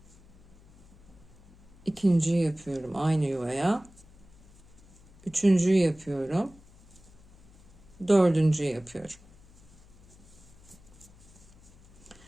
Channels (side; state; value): left; noise; hum, 24 dB below the sound